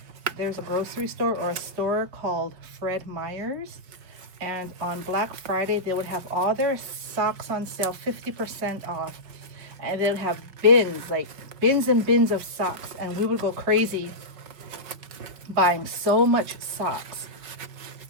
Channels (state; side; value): late; left; 5.2 ms